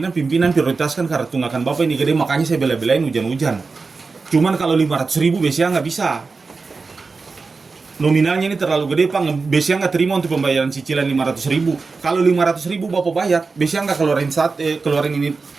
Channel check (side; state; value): left; quieter; 4.3 dB